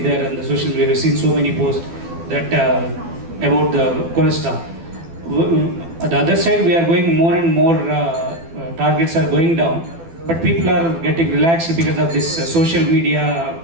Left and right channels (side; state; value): left; late; 12 ms